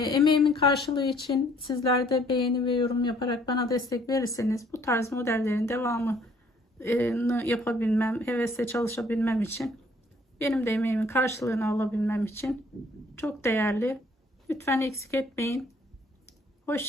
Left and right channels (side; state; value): both; normal; correlation 0.61